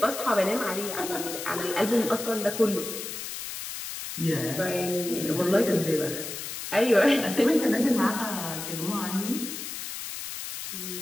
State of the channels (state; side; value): noise; left; hiss, 7 dB below the sound